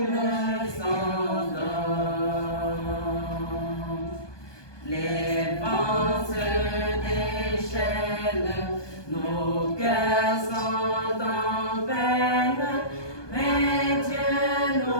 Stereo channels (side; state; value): right; late; 1.2 ms